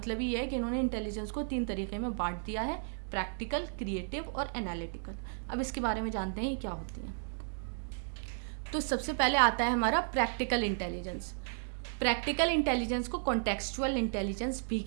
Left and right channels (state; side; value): silent; left; digital silence